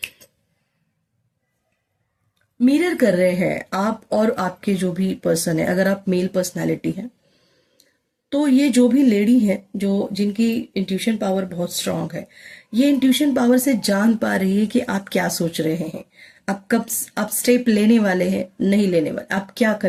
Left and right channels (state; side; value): identical; both; correlation 1.00